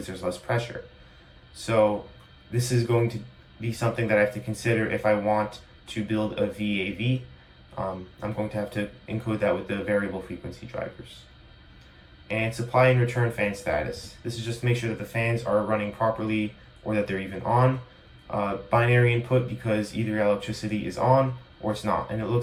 there's less pressure. So this is going to be something that I have to consider if I want to build a VAV. I'm going to have to encode that with the variable frequency drivers. And supply and return fan status. This is just to make sure that the fans are running properly or that they're even on. Binary input because either electricity is on or it's not, and it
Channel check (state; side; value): identical; both; correlation 1.00